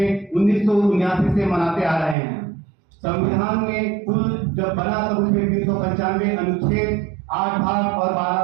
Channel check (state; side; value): drops out; left; at 2.1 s